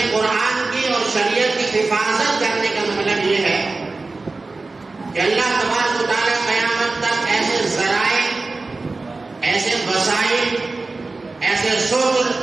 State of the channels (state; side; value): quieter; left; 3.6 dB